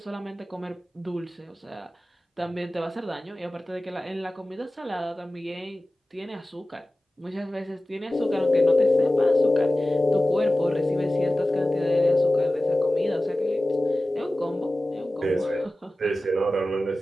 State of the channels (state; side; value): normal; both; correlation 0.96